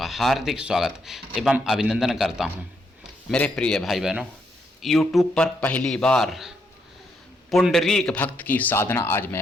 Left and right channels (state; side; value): normal; both; correlation 0.77